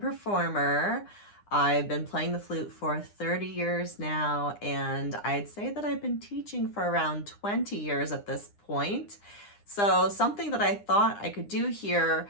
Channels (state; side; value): late; right; 9.9 ms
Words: performer. I've been playing the flute for 30 years now, and I'd say that I've been teaching for around 20 years at this point. So something that I thought I could do here,